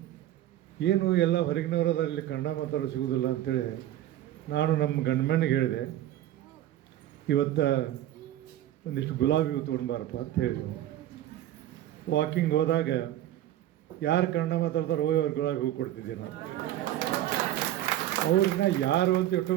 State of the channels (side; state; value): left; quieter; 13.2 dB